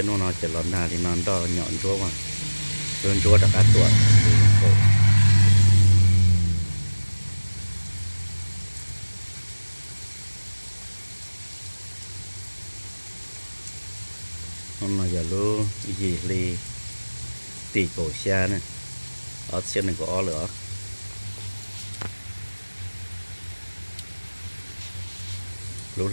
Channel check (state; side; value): inverted; both; correlation -1.00